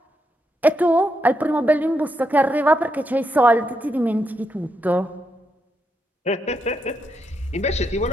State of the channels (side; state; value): both; normal; correlation 0.81